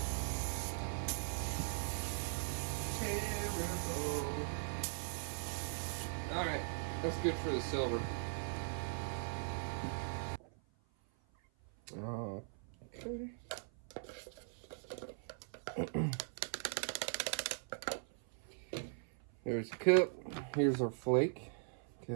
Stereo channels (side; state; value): left; silent; 51 dB below the other